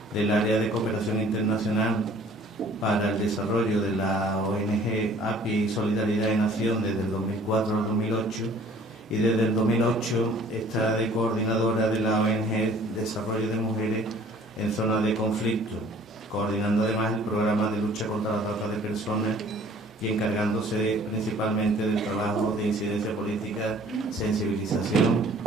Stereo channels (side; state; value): both; normal; correlation 0.53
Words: del área de cooperación internacional para el desarrollo de la ONG API Solidaridad en Acción desde el 2004 al 2008 y desde el 2008 está de coordinadora de la ONG Desarrollo de Mujeres en Zonas de Conflicto, coordinando además el programa de lucha contra la trata de personas y encargándose principalmente del trabajo de incidencia política, sensibilización,